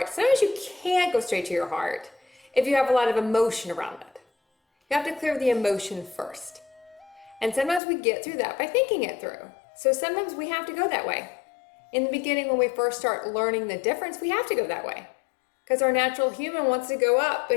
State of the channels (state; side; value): drops out; right; at 7.8 s